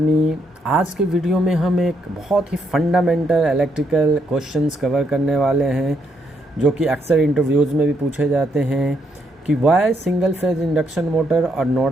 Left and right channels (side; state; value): both; normal; correlation 0.76